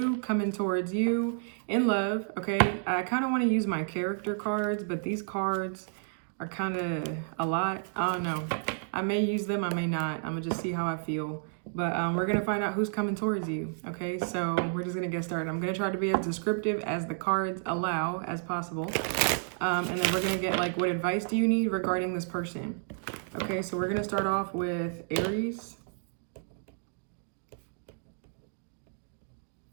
coming towards you in love, okay? I kind of want to use my character cards, but these cards are kind of a lot. I don't know. I may use them, I may not. I'm going to just see how I feel. But we're going to find out who's coming towards you, okay? So we're just going to get started. I'm going to try to be as descriptive as the cards allow as possible. And then we're going to get like, what advice do you need regarding this person? Okay, so we're going to start off with Aries.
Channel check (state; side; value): silent; left; digital silence